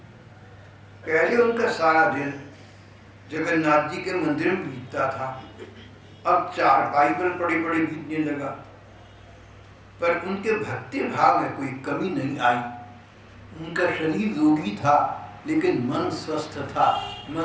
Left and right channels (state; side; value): identical; both; correlation 1.00